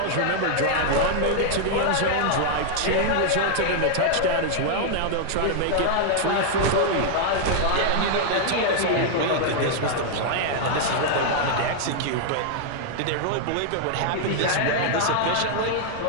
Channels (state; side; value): different; both; correlation 0.00